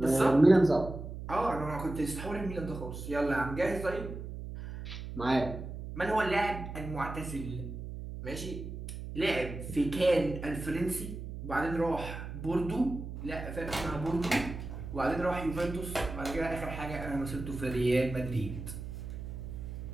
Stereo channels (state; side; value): noise; right; hum, 8 dB below the sound